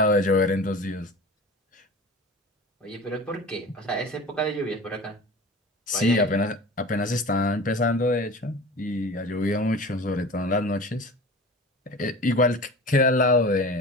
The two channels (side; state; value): both; normal; correlation 0.37